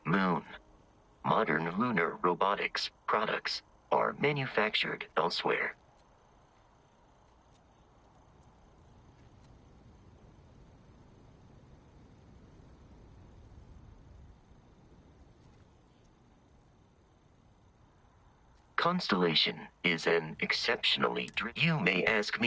moon. Modern lunar robotics products are manufactured elsewhere. Constellation is an exceptionally You may ask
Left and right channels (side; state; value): both; identical; correlation 1.00